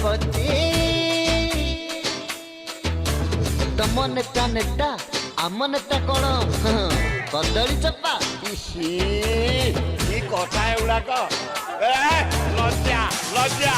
तम नेता नेता आम नेता कौन कदली चप्पा कथा एगुड़ाक लज्जा लज्जा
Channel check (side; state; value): both; identical; correlation 1.00